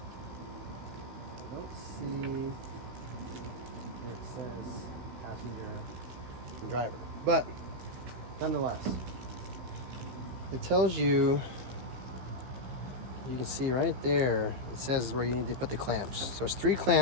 I don't see where it says passenger and driver, but nonetheless, it tells you, you can see right there, it says where you need to put the clamps. So it's 3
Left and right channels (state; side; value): late; left; 15 ms